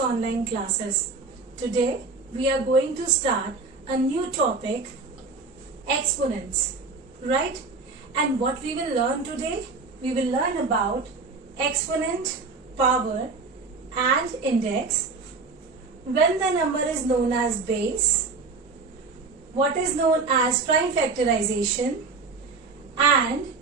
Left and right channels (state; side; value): quieter; left; 4.2 dB